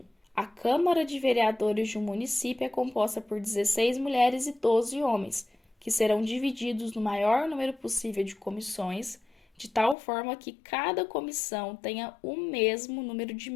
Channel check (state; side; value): drops out; right; at 10.0 s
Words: a Câmara de Vereadores de um município é composta por 16 mulheres e 12 homens, que serão divididos no maior número possível de comissões, de tal forma que cada comissão tenha o mesmo número de